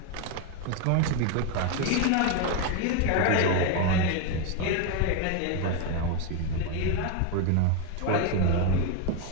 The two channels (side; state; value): both; different; correlation 0.02